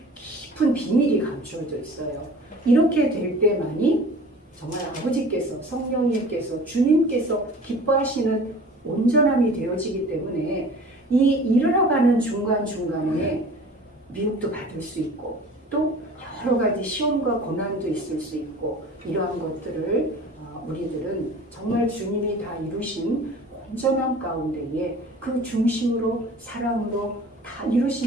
깊은 비밀이 감추어져 있어요. 이렇게 될 때만이 정말 아버지께서 성령님께서 주님께서 기뻐하시는 온전함이 되어지기 때문에 이 이르러가는 중간중간에 미혹도 받을 수 있고 또 여러 가지 시험과 고난도 있을 수 있고 이러한 것들을 우리들은 정말 주님이 다 이루신 온전함 가운데에 그 중심으로 사랑으로 다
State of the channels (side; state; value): both; normal; correlation 0.43